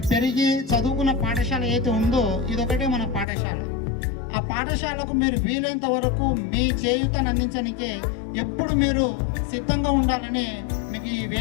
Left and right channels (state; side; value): drops out; right; at 3.2 s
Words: పెరిగి చదువుకున్న పాఠశాల ఏదైతే ఉందో ఇదొకటే మన పాఠశాల. ఆ పాఠశాలకు మీరు వీలైనంత వరకు మీ చేయూతను అందించడానికే ఎప్పుడు మీరు సిద్ధంగా ఉండాలని మీకు ఈ